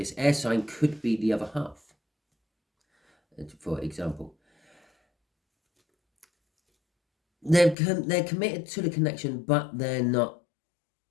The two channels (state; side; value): drops out; right; at 7.8 s